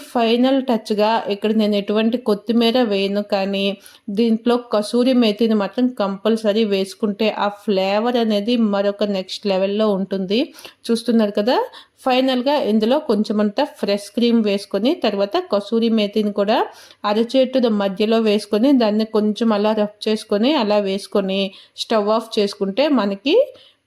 ఫైనల్ టచ్గా ఇక్కడ నేను ఎటువంటి కొత్తిమీర వేయను, కానీ దీంట్లో కసూరి మేతిని మాత్రం కంపల్సరీ వేసుకుంటే ఆ ఫ్లేవర్ అనేది మరొక నెక్స్ట్ లెవెల్లో ఉంటుంది. చూస్తున్నారు కదా, ఫైనల్గా ఇందులో కొంచెమంతా ఫ్రెష్ క్రీమ్ వేసుకొని తర్వాత కసూరి మేతిని కూడా అరచేతుల మధ్యలో వేసుకొని దాన్ని కొంచెం అలా రఫ్ చేసుకొని అలా వేసుకొని స్టవ్ ఆఫ్ చేసుకుంటే మనకి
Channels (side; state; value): both; identical; correlation 1.00